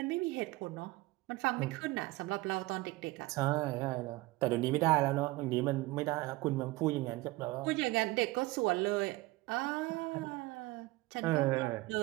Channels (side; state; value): left; quieter; 20.3 dB